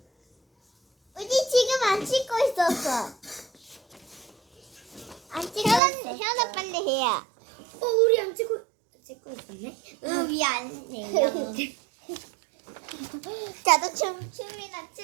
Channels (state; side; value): drops out; left; at 5.8 s